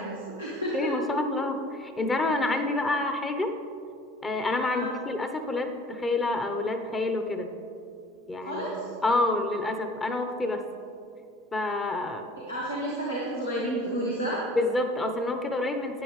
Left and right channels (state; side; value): normal; both; correlation 0.49